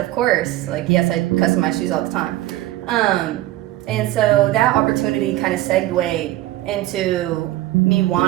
course." Yes, I customize shoes all the time. And so that opportunity kind of segued into me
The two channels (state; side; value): quieter; left; 15.9 dB